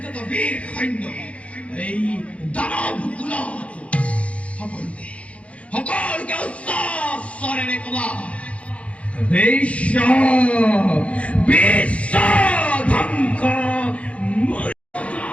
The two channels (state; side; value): late; right; 0.063 ms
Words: যত বীর সৈন্য এই দানব কুলত সকলকে উচ্চস্বরেৰে কবা বিশ্ব ধ্বংস